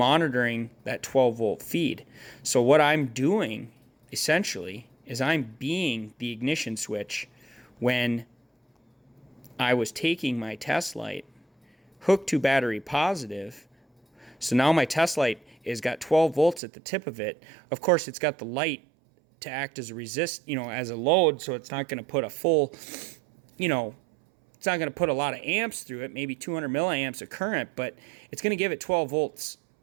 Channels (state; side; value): drops out; left; at 16.6 s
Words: that 12-volt feed. So what I'm doing, essentially, is I'm being the ignition switch when I was taking my test light, hooked to battery positive. So now my test light has got 12 volts at the tip of it. Of course, it's got the light to act as a as a load, so it's not going to put a full, it's not going to put a lot of amps through it, maybe 200 milliamps of current, but it's going to give it 12 volts